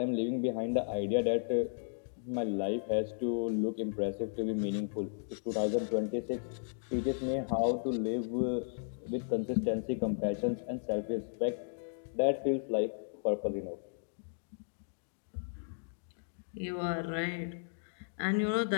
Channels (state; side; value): silent; right; digital silence